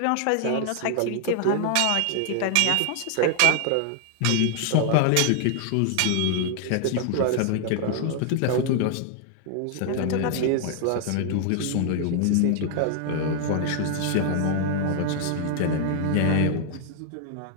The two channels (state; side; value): different; both; correlation 0.00